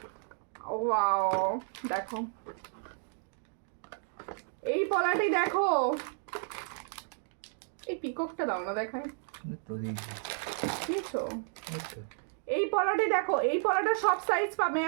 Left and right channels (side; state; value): left; silent; 56 dB below the other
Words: ওয়াও, দেখো এই পলাটি দেখো, এই পিককটা দাও না দেখায়, তো দেখি বুঝছো? এই পলাটি দেখো, এই পলাটা সব সাইজ পাবে।